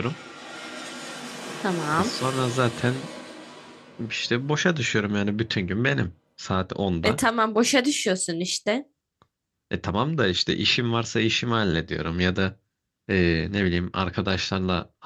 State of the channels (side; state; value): both; identical; correlation 1.00